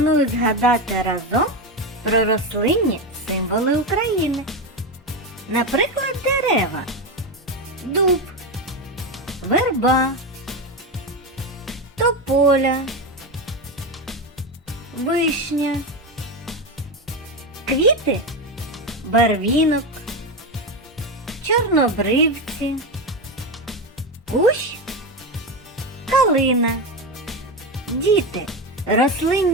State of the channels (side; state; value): both; normal; correlation 0.15